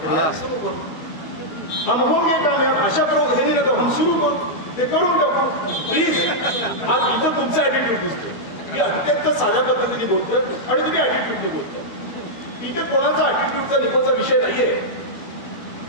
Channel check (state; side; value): late; right; 13 ms